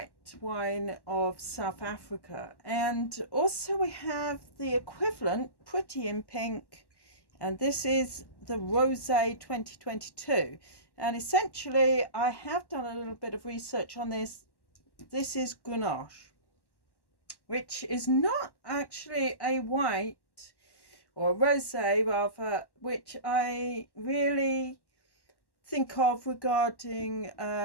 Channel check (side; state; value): right; late; 1.1 ms